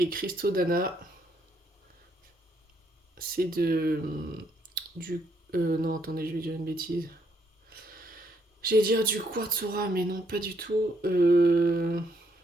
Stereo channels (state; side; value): normal; both; correlation 0.73